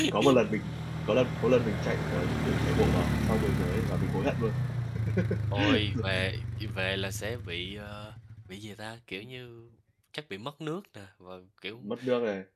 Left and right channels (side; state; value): both; identical; correlation 1.00